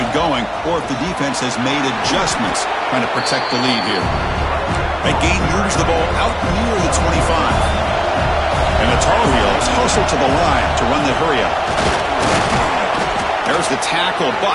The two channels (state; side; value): identical; both; correlation 1.00